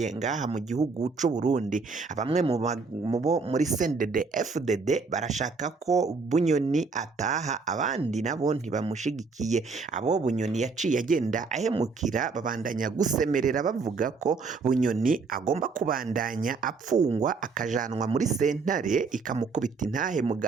ngaha mu gihugu c'u Burundi. Bamwe mu bo muri CNDD FDD barashaka ko Bunyoni ataha, abandi nabo ntibamushigikiye. Abo Bunyoni yaciye agenda ahemukira babandanya gusemerera bavuga ko Bunyoni agomba kubandanya apfungwa akajanwa muri sentare ikamukubita intahe mu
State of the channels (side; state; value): left; quieter; 4.5 dB